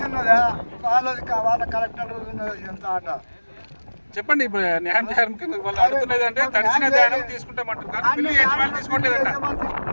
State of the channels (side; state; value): both; inverted; correlation -1.00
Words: ఉన్నదా వాళ్ళ కలెక్టర్ ఉన్నది ఎంత ఆట చెప్పండి. ఇప్పుడు న్యాయం చేయాలని వాళ్ళు అడుగుతున్నది అంటే తడిసిన ధాన్యం తీసుకుంటామంటారు కానీ మిల్లు యజమాని తీసుకోవట్లేదంట.